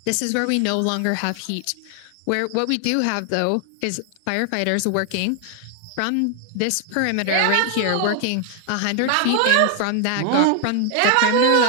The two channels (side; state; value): both; different; correlation 0.00